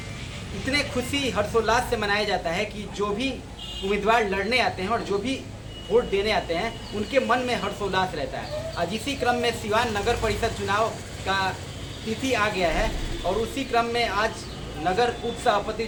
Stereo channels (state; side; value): identical; both; correlation 1.00